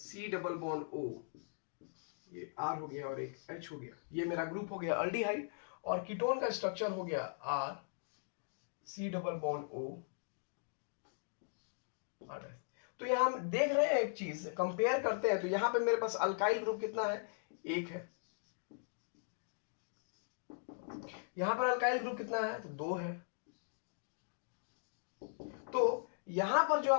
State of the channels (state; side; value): silent; right; digital silence